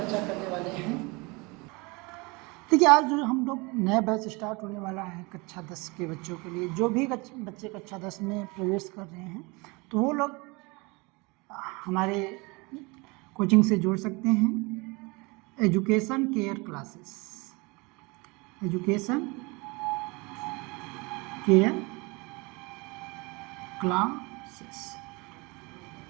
करने वाले हैं, देखिए आज जो हम लोग नया बैच स्टार्ट होने वाला है कक्षा 10 के बच्चों के लिए। जो भी बच्चे कक्षा 10 में प्रवेश कर रहे हैं तो वो लोग हमारे कोचिंग से जुड़ सकते हैं। Education care classes, education care classes.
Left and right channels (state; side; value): quieter; left; 26.7 dB